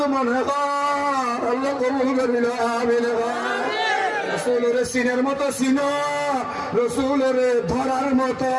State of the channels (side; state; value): both; identical; correlation 1.00